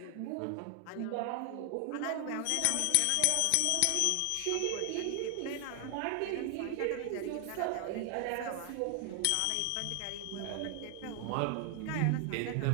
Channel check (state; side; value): different; both; correlation 0.00